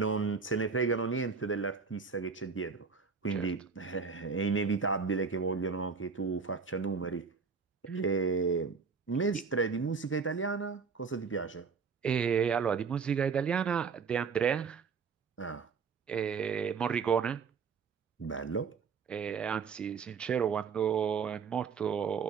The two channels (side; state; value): left; quieter; 5.5 dB